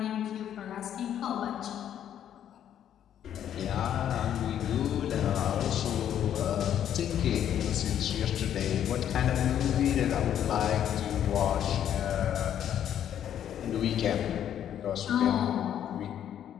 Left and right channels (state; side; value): quieter; right; 10.1 dB